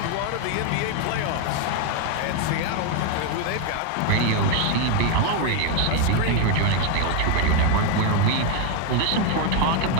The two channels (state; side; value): different; both; correlation 0.01